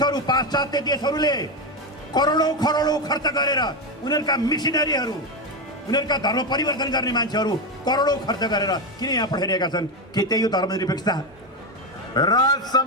पाश्चात्य देशहरूले करोडौं खरोडौं खर्च गरेर उनीहरूका मिसनरीहरू, उनीहरूका धर्म परिवर्तन गर्ने मान्छेहरू करोडौं खर्च गरेर किन यहाँ पठाइरहेका छन्? के त्यही हो धर्मनिरपेक्षता? राज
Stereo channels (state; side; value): normal; both; correlation 0.11